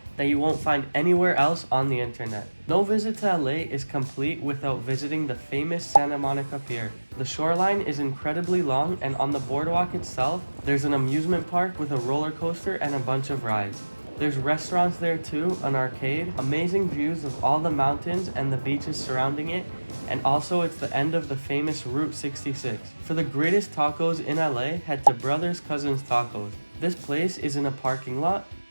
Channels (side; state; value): both; inverted; correlation -1.00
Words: that you won't find anywhere else on the internet. No visit to LA is complete without visiting the famous Santa Monica Pier. The shoreline is incredibly long, and on the boardwalk itself, there's an amusement park with a roller coaster and a bunch of rides. There's restaurants there too, an arcade, amazing views of all the mountains and the beaches surrounding it, and also it's the end of the famous Route 66. For the greatest tacos in LA, head to Brothers Cousins Tacos. This place is in a parking lot,